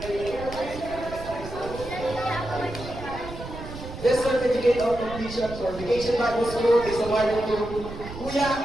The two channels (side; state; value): right; noise; rumble, 11 dB below the sound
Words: This certificate of completion for Vacation Bible School is awarded to Kuya